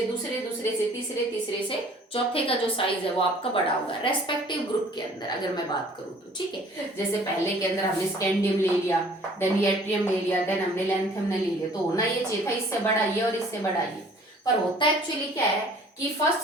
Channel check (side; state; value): both; normal; correlation 0.53